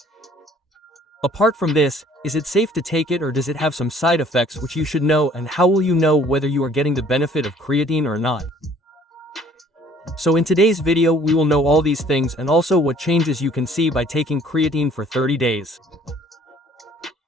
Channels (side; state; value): both; normal; correlation 0.56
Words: Apart from this, is it safe to take it or does it have some side effects which you should know, and how will you know whether you are getting the benefit of creatine or not? So in today's video we will know all these things and also what changes you can see by taking creatine for 30 days.